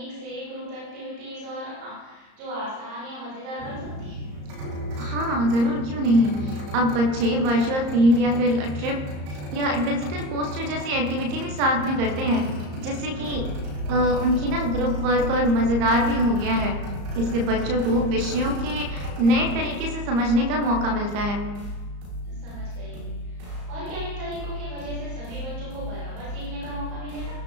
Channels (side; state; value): left; late; 34 ms